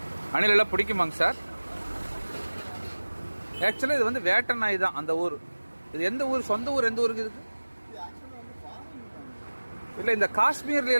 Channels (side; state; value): both; inverted; correlation -1.00